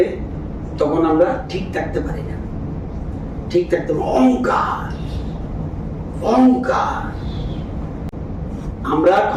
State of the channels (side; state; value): both; identical; correlation 1.00